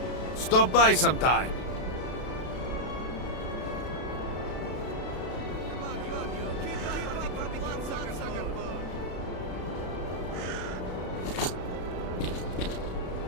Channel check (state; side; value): late; right; 32 ms